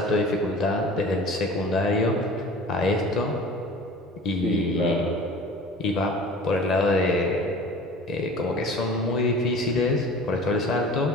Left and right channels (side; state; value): both; normal; correlation 0.42